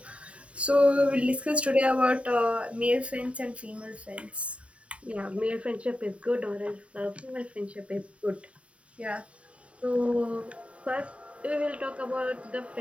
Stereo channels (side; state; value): left; late; 0.063 ms